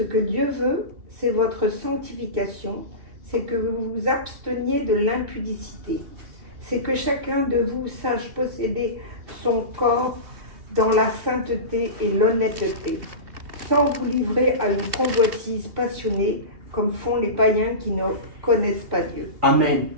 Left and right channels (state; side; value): late; left; 2.8 ms